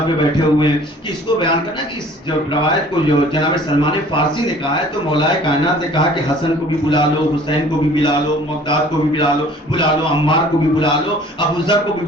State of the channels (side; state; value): both; normal; correlation 0.51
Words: پہ بیٹھے ہوئے ہیں کہ اس کو بیان کرنا کہ اس جو روایت کو جو جناب سلمان فارسی نے کہا ہے تو مولا کائنات نے کہا کہ حسن کو بھی بلا لو، حسین کو بھی بلا لو، مقداد کو بھی بلا لو، عمار کو بھی بلا لو، ابو ذر کو بھی